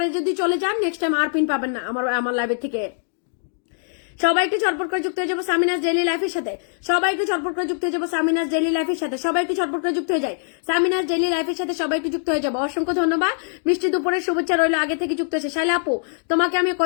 যদি চলে যান নেক্সট টাইম আর পিন পাবেন না আমার লাইভের থেকে। সবাই একটু চটপট করে যুক্ত হয়ে যাবো সামিনাস ডেইলি লাইফের সাথে, সবাই একটু চটপট করে যুক্ত হয়ে যাবো সামিনাস ডেইলি লাইফের সাথে, সবাই একটু চটপট করে যুক্ত হয়ে যায় সামিনাস ডেইলি লাইফের সাথে, সবাই একটু যুক্ত হয়ে যাবো। অসংখ্য ধন্যবাদ, মিষ্টি দুপুরের শুভেচ্ছা রইলো আগে থেকে যুক্ত হয়েছে। শাইলা আপু, তোমাকে আমি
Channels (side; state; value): right; silent; digital silence